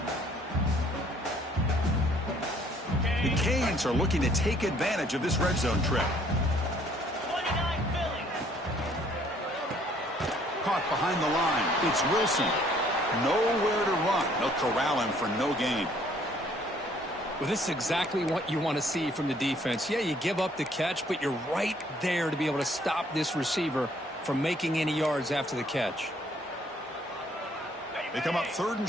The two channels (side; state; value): both; normal; correlation 0.62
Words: The Canes are looking to take advantage of this red zone trip. Caught behind the line. It's Wilson. Nowhere to run. They'll corral him for no gain. Well, this is exactly what you want to see from the defense. Yeah, you give up the catch, but you're right there to be able to stop this receiver from making any yards after the catch. They come up 3rd